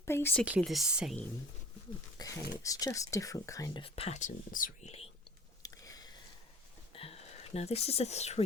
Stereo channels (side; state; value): both; normal; correlation 0.44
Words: basically the same. Okay, it's just different kind of patterns really. Now this is a